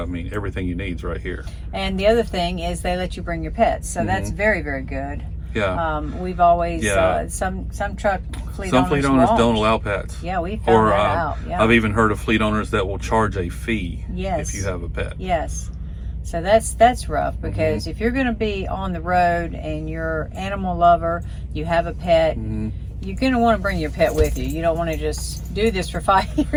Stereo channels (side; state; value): both; identical; correlation 1.00